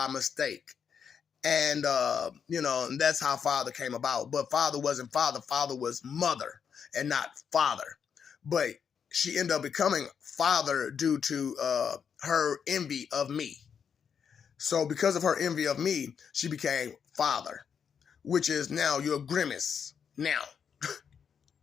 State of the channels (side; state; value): right; quieter; 7.1 dB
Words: mistake. And, you know, and that's how Father came about. But Father wasn't Father. Father was Mother and not Father. But she ended up becoming Father due to her envy of me. So because of her envy of me, she became Father, which is now your grimace now.